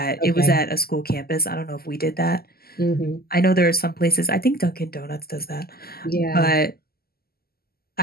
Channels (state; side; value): late; right; 0.45 ms